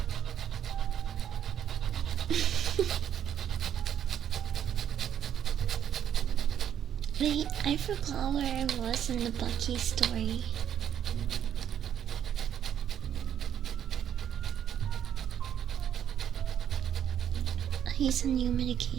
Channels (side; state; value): left; quieter; 9.6 dB